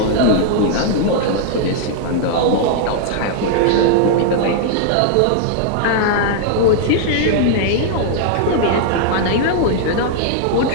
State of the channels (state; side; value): different; both; correlation -0.01